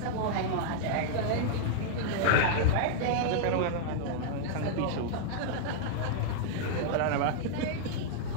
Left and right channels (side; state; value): both; different; correlation -0.01